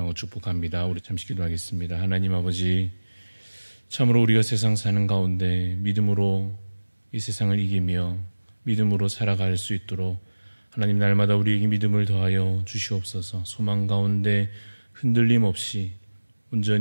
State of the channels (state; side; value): inverted; both; correlation -1.00